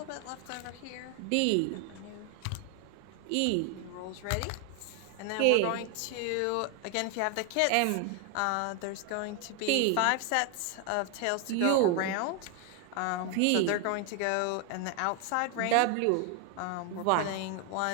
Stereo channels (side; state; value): both; different; correlation 0.00